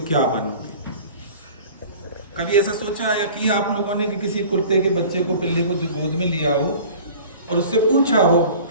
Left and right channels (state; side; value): inverted; both; correlation -0.43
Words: क्या बनोगे। कभी ऐसा सोचा या किया आप लोगों ने कि किसी कुत्ते के बच्चे को, पिल्ले को जो गोद में लिया हो और उससे पूछा हो